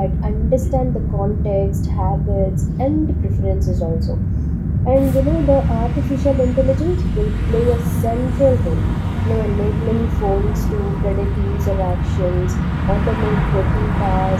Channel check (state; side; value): identical; both; correlation 1.00